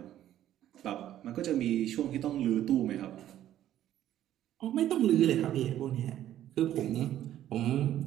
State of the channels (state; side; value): quieter; left; 12.2 dB